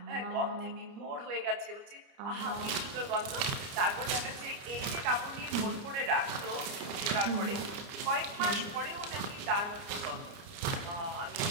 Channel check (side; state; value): left; late; 30 ms